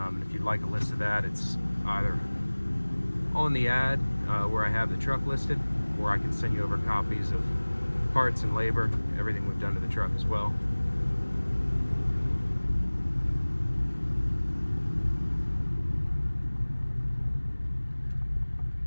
if you'd like a list of that, it's either on the ad where I have the truck listed, or I can send you over copies of parts and labor, everything we've done to the truck as well.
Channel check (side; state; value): both; inverted; correlation -1.00